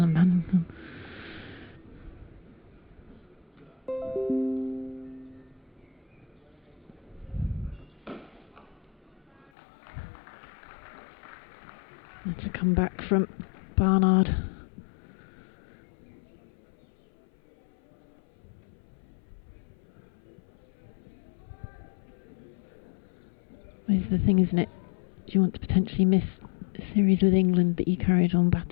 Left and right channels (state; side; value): drops out; right; at 9.5 s